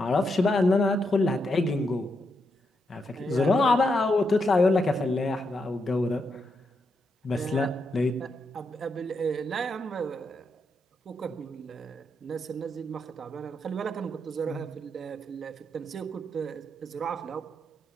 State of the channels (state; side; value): normal; both; correlation 0.82